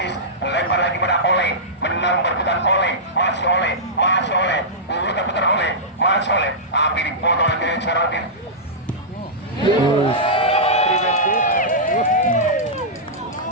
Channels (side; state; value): both; normal; correlation -0.13